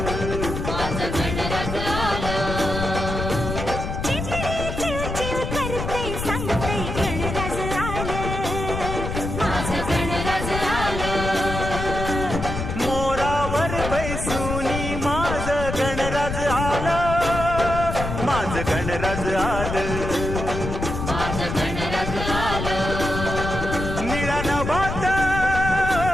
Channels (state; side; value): noise; left; rumble, 4 dB below the sound